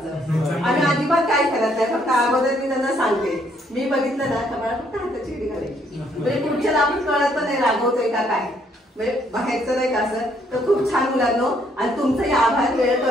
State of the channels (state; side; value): normal; both; correlation 0.69